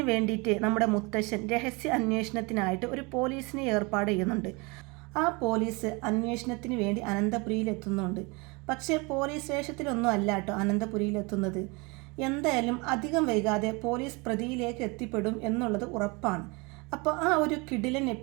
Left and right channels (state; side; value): quieter; left; 27.8 dB